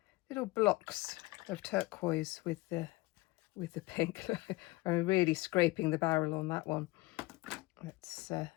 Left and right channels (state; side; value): quieter; right; 21.5 dB